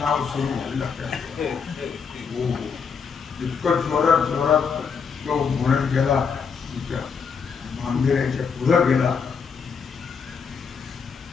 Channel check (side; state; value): right; quieter; 6.0 dB